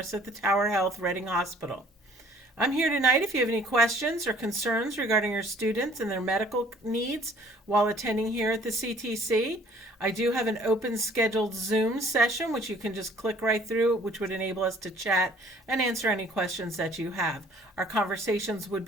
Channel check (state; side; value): normal; both; correlation 0.56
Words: at the Tower Health Reading Hospital. I'm here tonight if you have any questions or concerns regarding your students and their medical needs while attending here at the CTC. I do have an open scheduled Zoom session which you can just click right through, which would enable us to chat and answer any questions that you have. Our conversations would